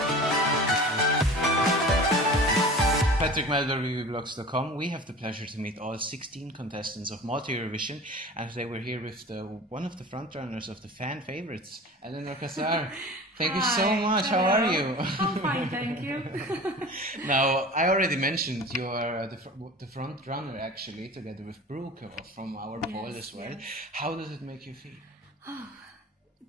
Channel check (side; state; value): both; normal; correlation 0.38